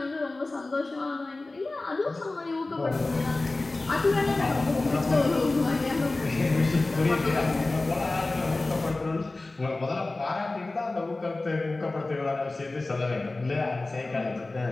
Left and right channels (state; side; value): quieter; right; 3.1 dB